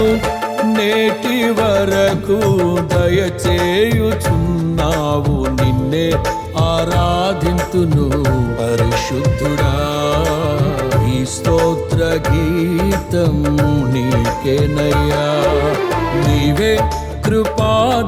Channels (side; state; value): both; identical; correlation 1.00